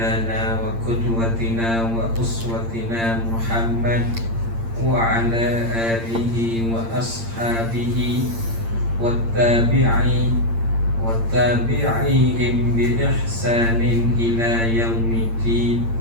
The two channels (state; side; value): late; left; 8.7 ms